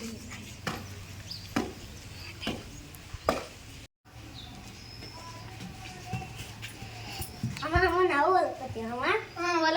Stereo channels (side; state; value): both; identical; correlation 1.00